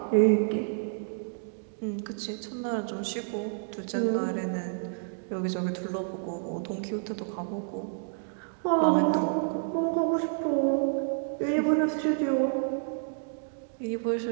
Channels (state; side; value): silent; left; digital silence